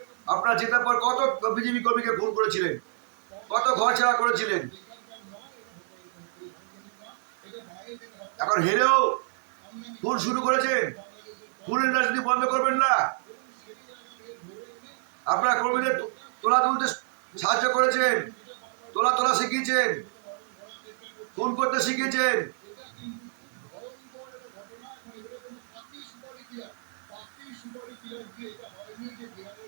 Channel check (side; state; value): left; silent; 59 dB below the other